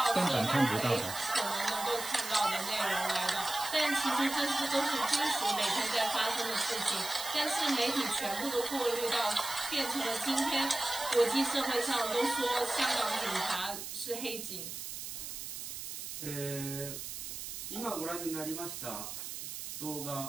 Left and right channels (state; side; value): noise; right; hiss, 7 dB below the sound